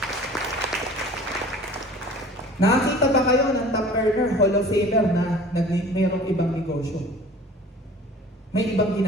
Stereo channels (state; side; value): normal; both; correlation 0.45